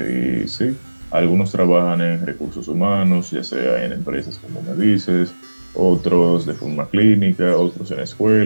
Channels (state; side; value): inverted; both; correlation -1.00